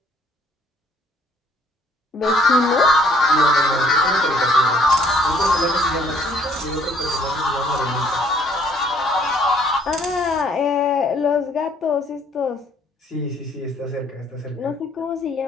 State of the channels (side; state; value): both; normal; correlation 0.62